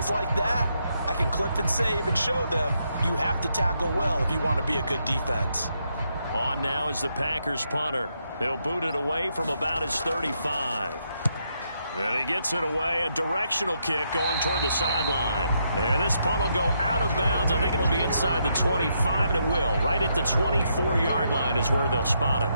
like that, I can clip and save and show them you have to tackle well if you want to be a good defense. On now is the Packers punter. He'll boot it away from about his 35. And he gets it away, a directional kick going toward the sideline. And this punt will go out of bounds. I think it'll be inside the 25, and it will. Right at the 24-yard line is where they'll spot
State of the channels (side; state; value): both; inverted; correlation -0.78